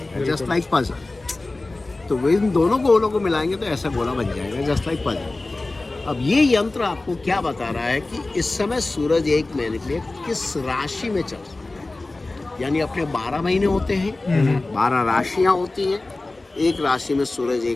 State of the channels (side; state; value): right; quieter; 3.1 dB